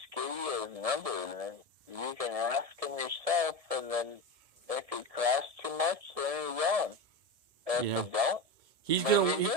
give you his number, and then you can ask him yourself, and then if he costs too much, then he's on. If he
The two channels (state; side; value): late; left; 1.7 ms